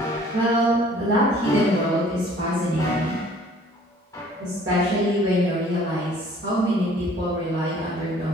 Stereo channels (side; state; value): both; normal; correlation 0.54